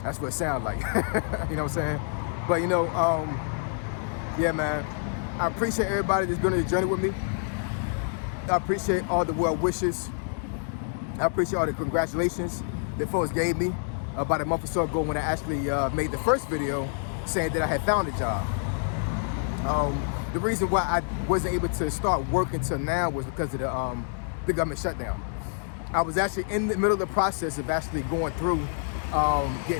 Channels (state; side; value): silent; right; digital silence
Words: That's what it sounds like. You know what I'm saying? But, you know, yeah, man, I appreciate everybody that's been on the journey with me. I appreciate all the well wishes. I appreciate all the congratulations that folks gave me about a month or so ago when I actually made the first video saying that I had found a job. The reason why I wasn't able to start working till now was because of the government shutdown. I was actually in the middle of the process of actually going through